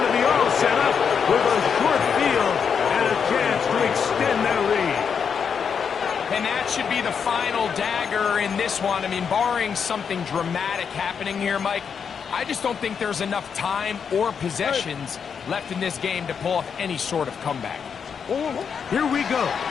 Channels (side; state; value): right; quieter; 6.7 dB